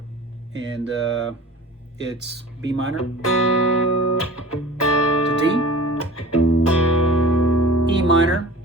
And it's B minor to D, E minor,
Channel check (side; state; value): both; normal; correlation 0.40